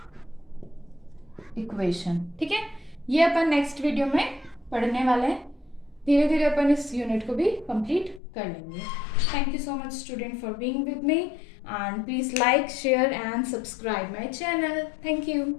equation, ठीक है। ये अपन नेक्स्ट वीडियो में पढ़ने वाले हैं। धीरे धीरे अपन इस यूनिट को भी कंप्लीट कर लेंगे। Thank you so much student for being with me, and please like, share and subscribe my channel. Thank you.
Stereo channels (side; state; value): right; drops out; at 8.2 s